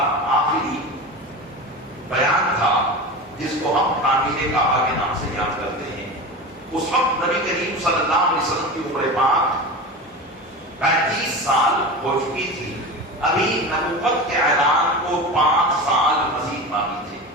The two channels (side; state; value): both; normal; correlation 0.28